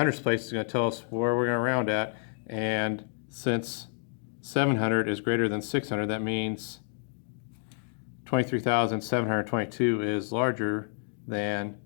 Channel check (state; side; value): silent; right; digital silence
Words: place is going to tell us where we're going to round at, and since 700 is greater than 600, that means 23,722 is larger than